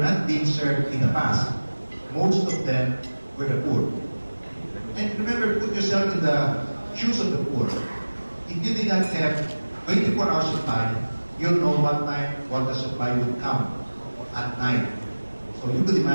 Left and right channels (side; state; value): both; inverted; correlation -1.00